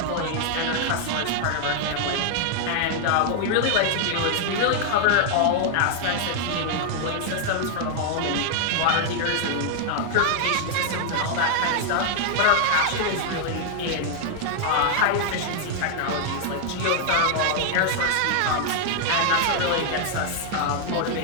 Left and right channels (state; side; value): different; both; correlation 0.00